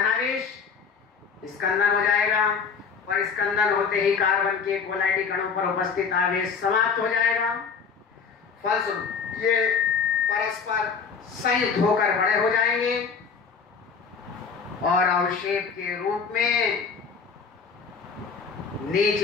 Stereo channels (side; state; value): right; quieter; 5.8 dB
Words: स्कंदन हो जाएगा और स्कंदन होते ही कार्बन के कोलाइडी कणों पर उपस्थित आवेश समाप्त हो जाएगा। फलस्वरूप ये परस्पर संयुक्त होकर बड़े हो जाएंगे और अवक्षेप के रूप में